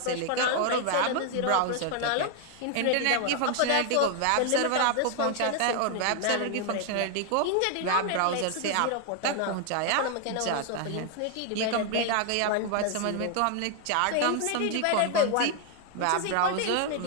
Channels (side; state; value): both; different; correlation 0.00